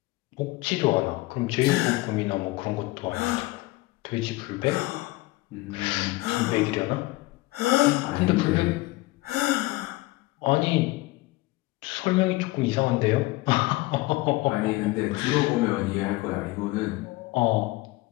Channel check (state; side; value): quieter; right; 20.7 dB